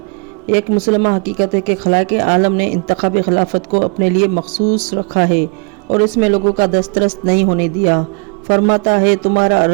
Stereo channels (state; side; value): quieter; left; 34.1 dB